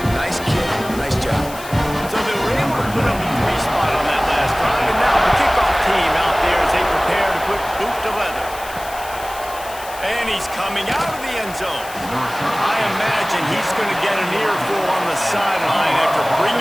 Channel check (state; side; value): noise; left; hiss, 15 dB below the sound